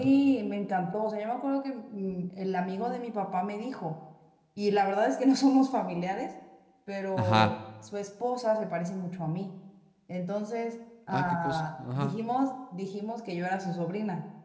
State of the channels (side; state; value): both; identical; correlation 1.00